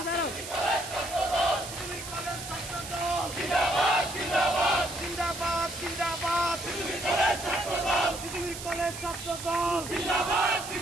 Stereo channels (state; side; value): noise; right; hiss, 10 dB below the sound